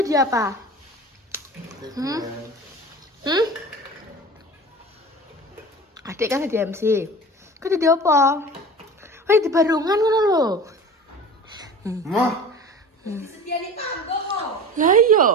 apa? Adik kan jadi MC. Kau jadi apa? Wah, di barungan ngono lho. Mah. Disediani panggung kok. Lah iya.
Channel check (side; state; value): both; normal; correlation 0.36